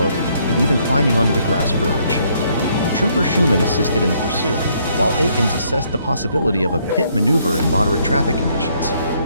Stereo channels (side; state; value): both; inverted; correlation -0.69